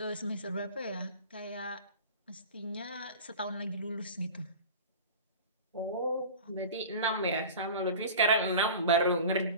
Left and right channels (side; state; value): both; inverted; correlation -0.36